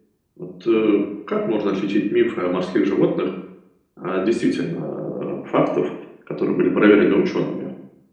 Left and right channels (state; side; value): identical; both; correlation 1.00